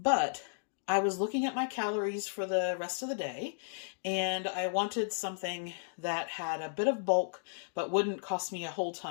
I was looking at my calories for the rest of the day, and I wanted something that had a bit of bulk but wouldn't cost me a whole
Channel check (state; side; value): silent; right; digital silence